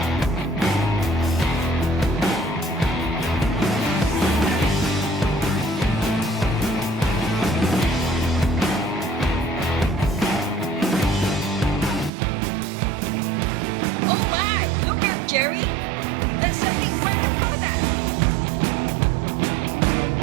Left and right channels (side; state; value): left; drops out; at 12.1 s